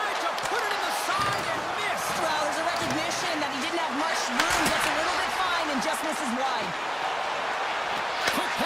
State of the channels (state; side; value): identical; both; correlation 1.00